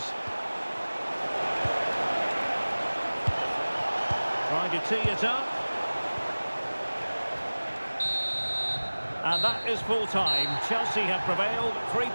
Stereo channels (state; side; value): inverted; both; correlation -1.00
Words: Trying to tee it up. And that is full time. Chelsea have prevailed. 3